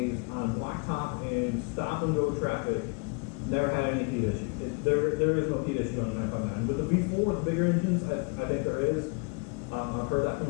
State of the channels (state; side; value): quieter; right; 33.3 dB